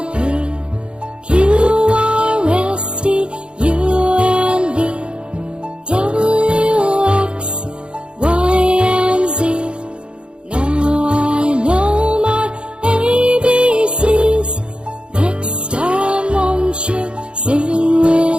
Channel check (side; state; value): left; late; 0.055 ms